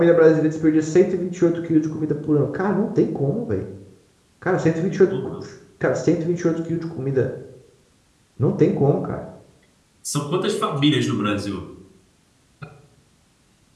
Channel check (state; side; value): identical; both; correlation 1.00